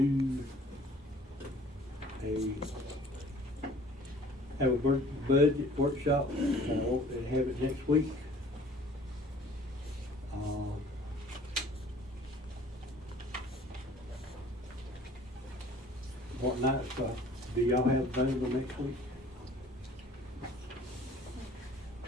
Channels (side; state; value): both; normal; correlation 0.52